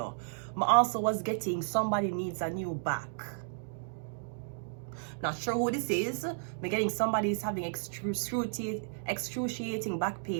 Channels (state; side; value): silent; left; digital silence